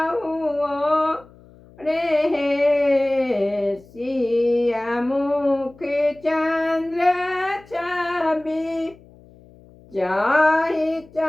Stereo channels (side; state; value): left; noise; hum, 25 dB below the sound